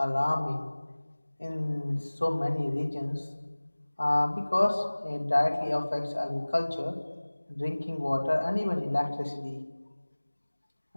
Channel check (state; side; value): inverted; both; correlation -1.00